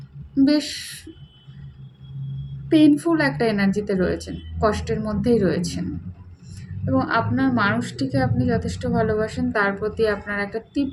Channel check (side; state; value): both; identical; correlation 1.00